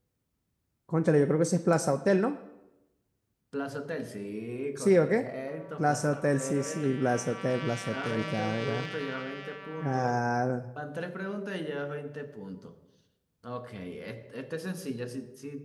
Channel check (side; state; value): both; identical; correlation 1.00